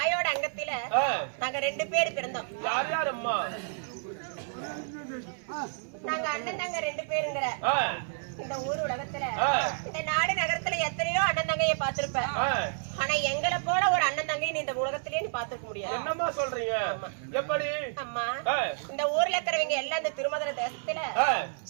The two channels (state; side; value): silent; left; 58 dB below the other